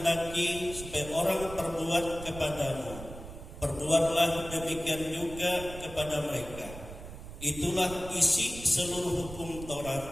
supaya orang perbuat kepadamu, perbuatlah demikian juga kepada mereka. Itulah isi seluruh hukum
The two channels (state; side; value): noise; right; rumble, 13 dB below the sound